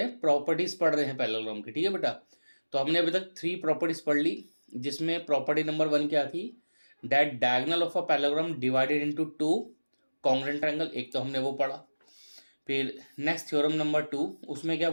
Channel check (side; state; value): both; inverted; correlation -1.00